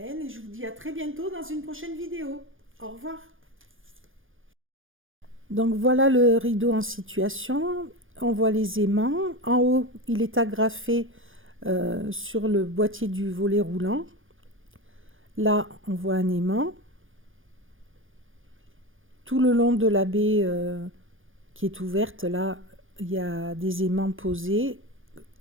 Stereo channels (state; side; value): late; left; 0.59 ms